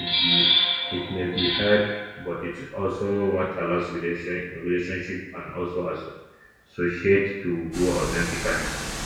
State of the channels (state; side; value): identical; both; correlation 1.00